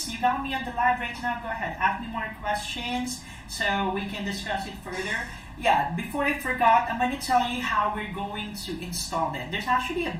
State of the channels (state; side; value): identical; both; correlation 1.00